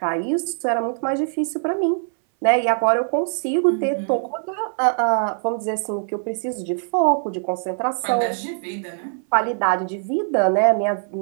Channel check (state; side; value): silent; left; 62 dB below the other